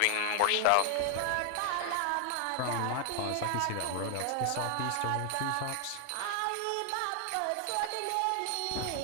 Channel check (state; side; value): different; both; correlation 0.00